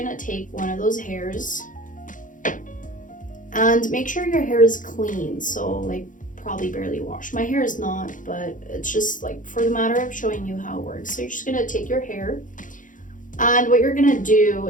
take one of those hairs and make sure your hair is clean. So like probably barely washed. My hair is not, but it's just like for the matter of showing you how it works. So you're just gonna take your hair, and what you're gonna do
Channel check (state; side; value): late; right; 0.38 ms